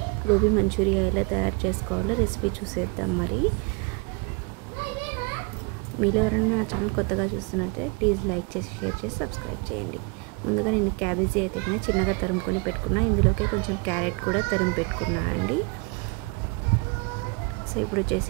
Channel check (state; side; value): quieter; left; 30.0 dB